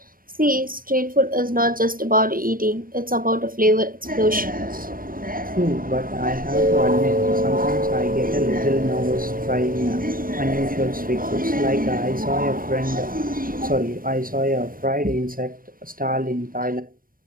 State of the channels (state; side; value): late; left; 0.41 ms